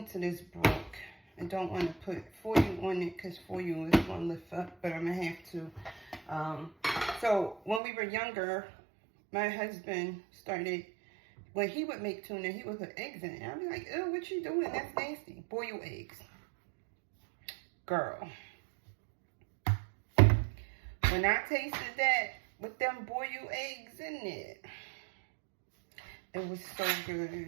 to this broke. I don't want to put foil on it because foil is going to lift up, but I'm going to have to. So when we were younger, my husband started, when he would make tuna, he would put eggs in it. I'd be like, ew, what you doing? That's nasty. Boil eggs. Girl. When I tasted that with them boiled eggs in it, it was so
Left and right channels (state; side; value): drops out; left; at 7.8 s